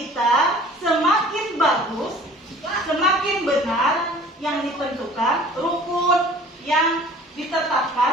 semakin bagus, semakin benar yang ditentukan, rukun yang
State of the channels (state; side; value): normal; both; correlation 0.48